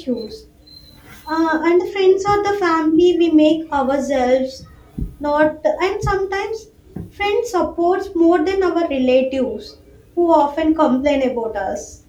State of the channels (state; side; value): identical; both; correlation 1.00